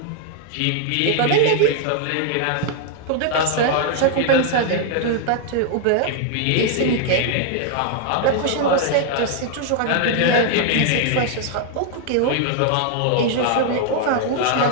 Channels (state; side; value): different; both; correlation 0.00